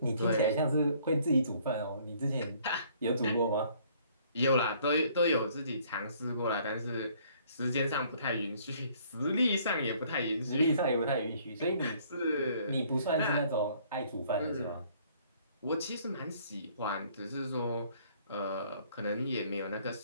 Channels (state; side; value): inverted; both; correlation -0.60